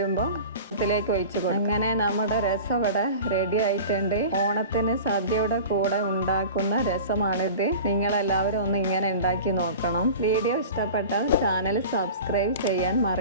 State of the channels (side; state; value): both; inverted; correlation -0.37